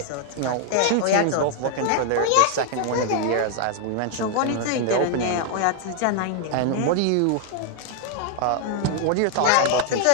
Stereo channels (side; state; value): both; different; correlation 0.00